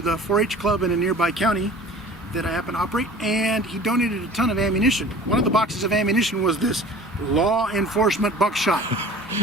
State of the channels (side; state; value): both; normal; correlation 0.43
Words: the 4-H club in a nearby county that I happen to operate, and he donated a ton of ammunition. One of the boxes of ammunition was this law enforcement buckshot.